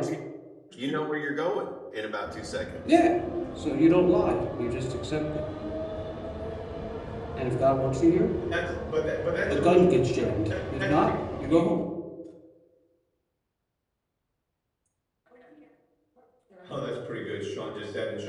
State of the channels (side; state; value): both; identical; correlation 1.00